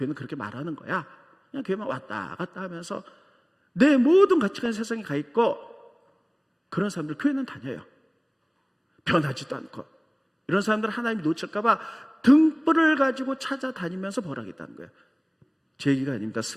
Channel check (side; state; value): both; identical; correlation 1.00